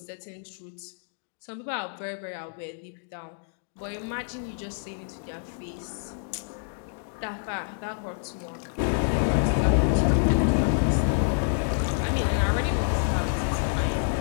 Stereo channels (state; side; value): silent; right; digital silence